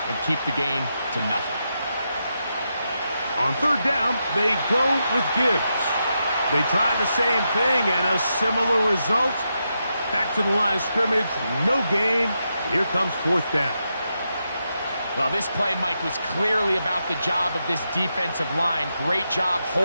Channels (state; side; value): inverted; both; correlation -0.85